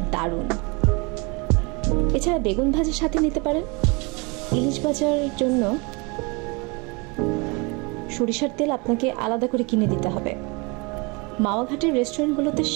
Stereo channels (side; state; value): left; quieter; 29.3 dB